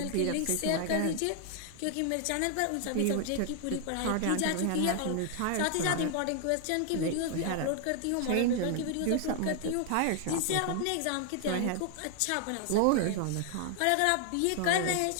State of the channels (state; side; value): different; both; correlation 0.00